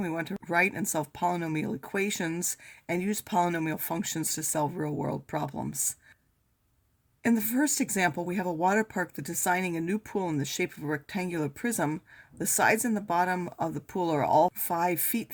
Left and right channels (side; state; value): both; identical; correlation 1.00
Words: we want to write and solve polynomial equations and use polynomial functions to solve real-world problems. In the first example, we have a water park that's designing a new pool in the shape of a rectangular prism. The sides and the bottom of the pool are all 5 feet